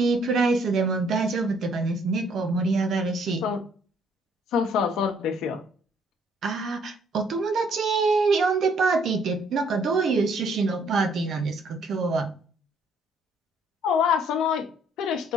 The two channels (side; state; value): both; normal; correlation 0.64